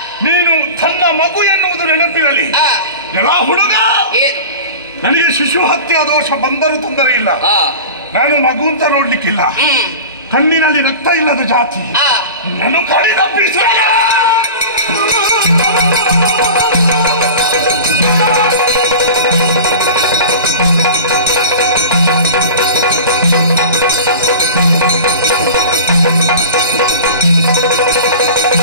ನೀನು ತನ್ನ ಮಗು ಎನ್ನುವುದು ನೆನಪಿರಲಿ. ಎಲ್ಲ ಹುಡುಗ, ನನಗೆ ಶಿಶು ಹತ್ಯೆ ದೋಷ ಬಂದರೂ ತೊಂದರೆ ಇಲ್ಲ. ನಾನು ಮಗು ಅಂತ ನೋಡ್ಲಿಕ್ಕಿಲ್ಲ. ಕಣ್ಣಿನಲ್ಲಿ ರಕ್ತ ಇಲ್ಲದ ಜಾತಿ. ನಾನು ಕಡಿದ ಬಿಸಿಲ.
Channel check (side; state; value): both; inverted; correlation -0.35